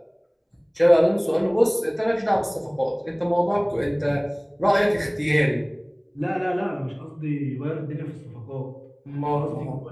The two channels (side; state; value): both; identical; correlation 1.00